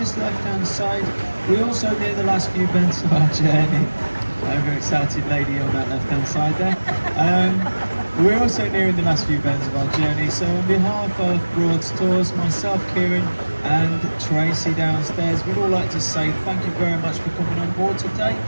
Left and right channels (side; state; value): both; inverted; correlation -1.00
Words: left-hand side, we also near the last few bends of our journey. Overexcited lady on that left-hand side there. We're also nearing the last few bends of our journey, so on behalf of Broads Tours, myself, Kieran, and Tracy downstairs, we'd all like to say thank you very much for coming on board today.